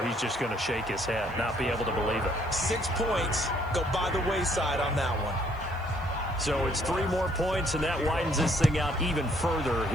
he's just going to shake his head, not be able to believe it. 6 points go by the wayside on that one. So it's 3 more points, and that widens this thing out even further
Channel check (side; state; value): right; noise; hiss, 29 dB below the sound